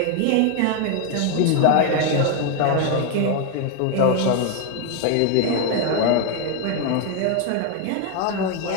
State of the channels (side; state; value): both; different; correlation 0.01